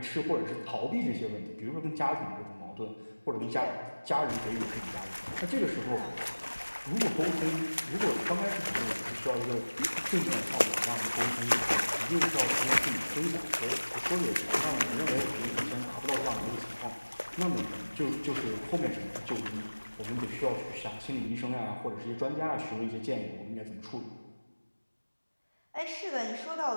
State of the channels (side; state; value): both; inverted; correlation -1.00